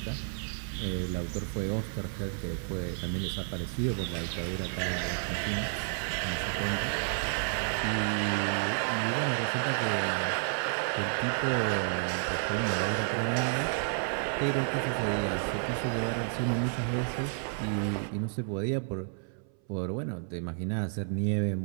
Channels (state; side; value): silent; left; 57 dB below the other